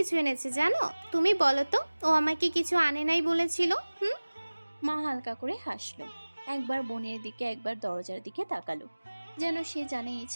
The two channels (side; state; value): both; inverted; correlation -1.00